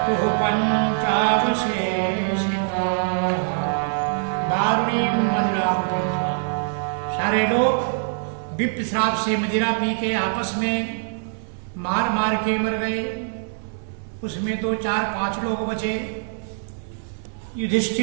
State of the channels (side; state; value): left; silent; digital silence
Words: पंचावशेषिताः। वारुणीं मदिरां पीत्वा, सारे लोग विप्र श्राप से मदिरा पी के आपस में मार मार के मर गए। उसमें तो 4-5 लोग बचे।